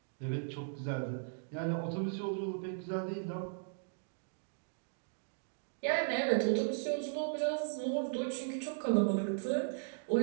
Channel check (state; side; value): silent; left; digital silence